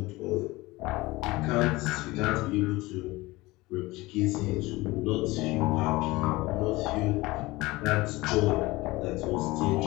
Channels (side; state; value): right; quieter; 20.8 dB